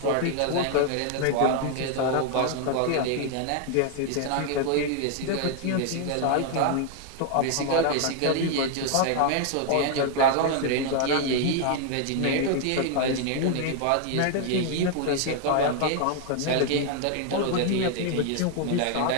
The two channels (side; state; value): both; different; correlation 0.00